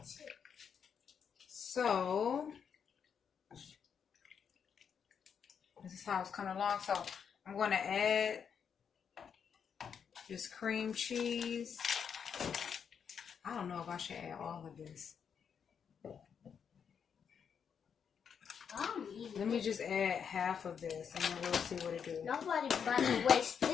So, this is how it's coming along. So, I'm going to add this cream cheese. I don't know if I should add all of this. Let me just add half of this and then we'll see what it do. Nobody's about to waste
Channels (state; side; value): quieter; right; 7.2 dB